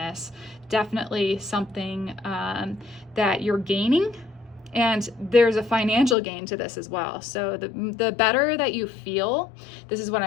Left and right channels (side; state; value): right; drops out; at 6.2 s